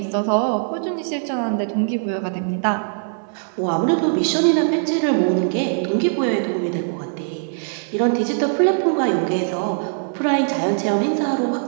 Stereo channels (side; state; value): left; silent; 59 dB below the other